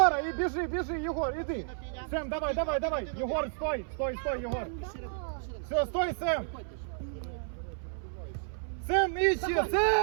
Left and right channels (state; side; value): silent; left; 57 dB below the other